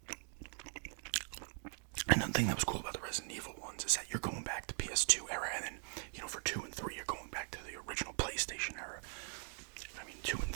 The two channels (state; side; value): silent; left; 50 dB below the other